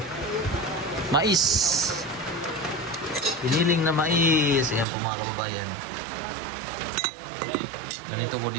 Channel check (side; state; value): left; drops out; at 4.9 s